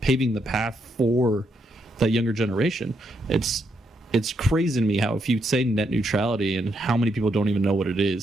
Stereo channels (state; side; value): normal; both; correlation 0.78